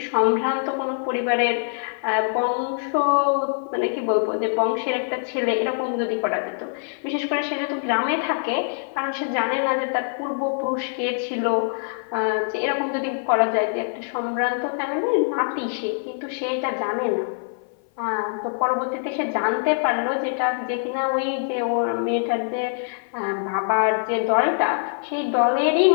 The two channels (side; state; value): right; silent; 56 dB below the other